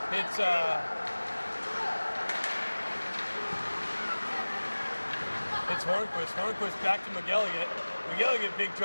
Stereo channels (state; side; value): inverted; both; correlation -1.00